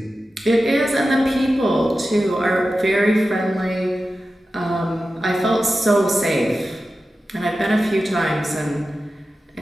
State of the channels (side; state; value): both; normal; correlation 0.93